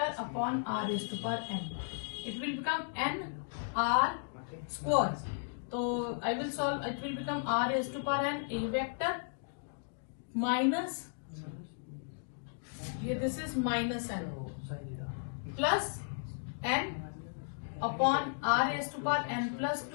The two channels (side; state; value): right; silent; digital silence